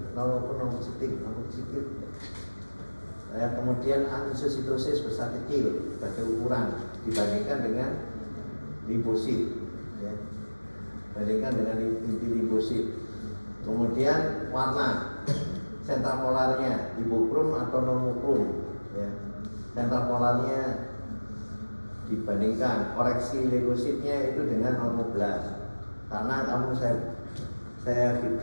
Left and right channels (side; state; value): both; inverted; correlation -1.00